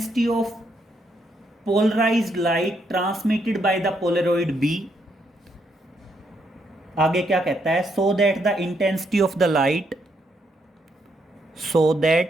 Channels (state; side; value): normal; both; correlation 0.76